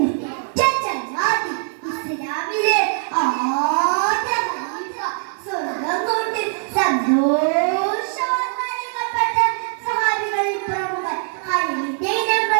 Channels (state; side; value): silent; left; 65 dB below the other